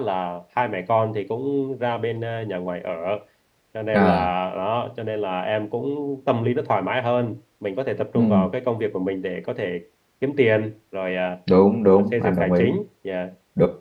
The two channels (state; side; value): identical; both; correlation 1.00